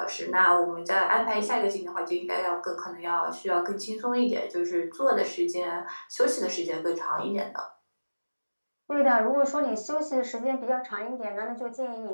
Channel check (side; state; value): both; inverted; correlation -1.00